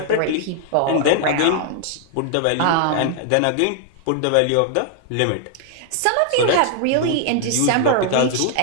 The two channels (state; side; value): different; both; correlation 0.00